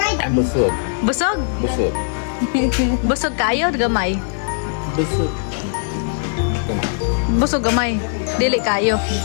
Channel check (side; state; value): right; silent; digital silence